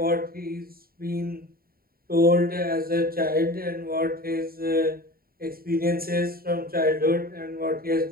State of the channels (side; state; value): left; late; 0.43 ms